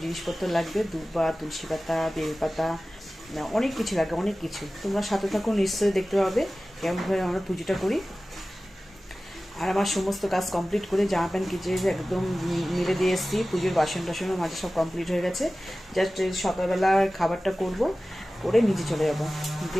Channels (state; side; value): normal; both; correlation 0.96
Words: জিনিসপত্র লাগবে, দুব্বা, তুলসী পাতা, বেলপাতা, অনেক কিছু লাগবে, অনেক কিছু। তোমরা সাথে থাকো, নিশ্চয়ই দেখতে পাবে কেমনভাবে আমরা পুজোটা করি। আর আমার সমস্ত কাজ কমপ্লিট করে জামা প্যান্ট কিচে একদম মিলে দিয়ে এসেছি। পুজোর বাসন টাসনও মাঝে সব কমপ্লিট হয়ে গেছে। জাস্ট সকালবেলা খাবারটা করব, করে নিচে চলে যাবো,